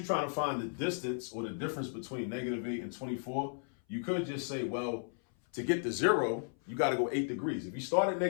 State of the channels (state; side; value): silent; right; 55 dB below the other